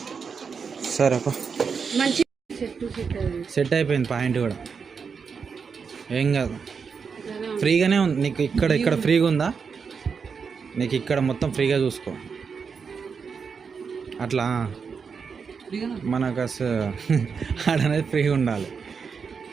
సరే అప్ప, సెట్ అయిపోయింది పాయింట్ కూడా, ఏం కాదు. ఫ్రీగానే ఉంది నీకు. ఇక్కడ ఫ్రీగా ఉందా నీకు? ఇక్కడ మొత్తం ఫ్రీగా చూసుకో. అట్లా మనకు అసలు ఆడనేది ఫ్రీగా ఉండాలి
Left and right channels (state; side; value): quieter; left; 5.8 dB